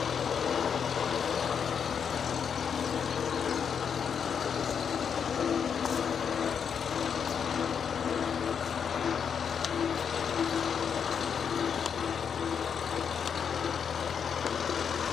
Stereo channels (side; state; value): right; quieter; 7.1 dB